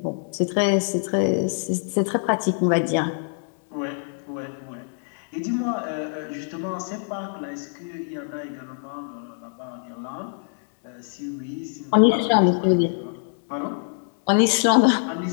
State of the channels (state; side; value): silent; right; digital silence